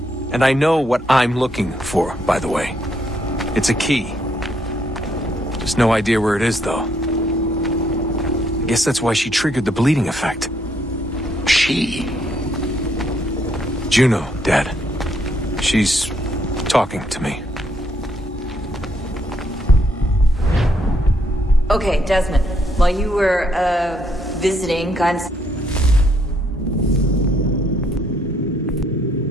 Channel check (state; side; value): normal; both; correlation 0.72